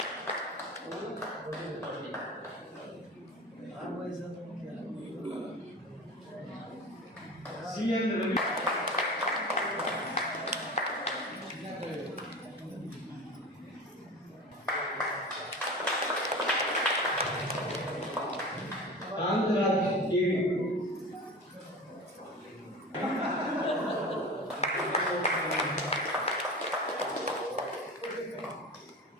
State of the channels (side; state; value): both; normal; correlation 0.32